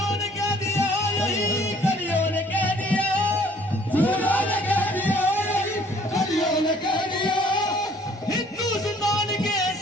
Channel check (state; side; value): normal; both; correlation 0.58